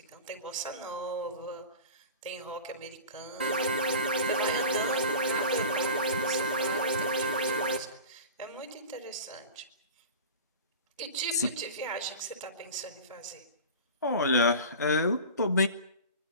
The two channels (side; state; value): both; inverted; correlation -0.35